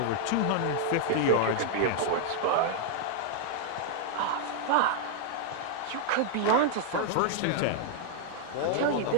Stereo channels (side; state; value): both; different; correlation 0.00